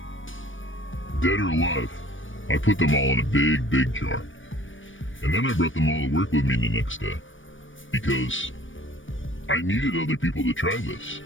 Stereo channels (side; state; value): right; late; 0.56 ms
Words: Dead or alive, I put them all in a big jar. And then I brought them all to work with me the next day. Because I needed other people to try this.